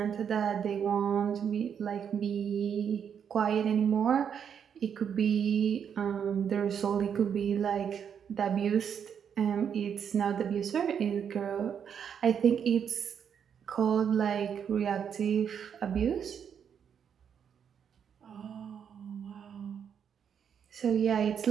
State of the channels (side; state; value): left; quieter; 7.8 dB